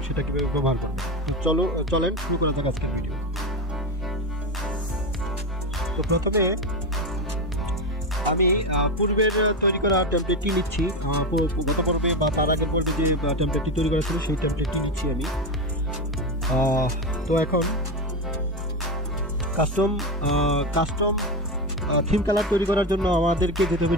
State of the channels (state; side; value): normal; both; correlation 0.16